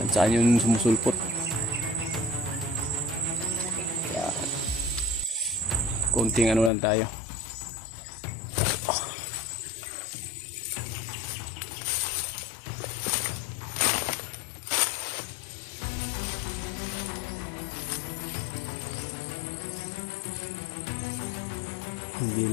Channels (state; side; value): drops out; right; at 6.7 s